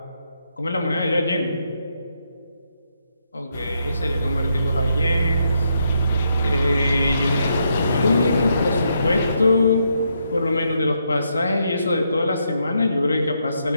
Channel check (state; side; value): inverted; both; correlation -0.78